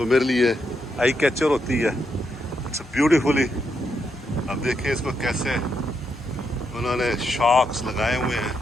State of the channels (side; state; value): both; normal; correlation 0.80